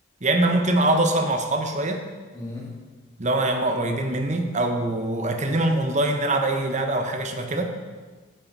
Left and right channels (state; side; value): normal; both; correlation 0.26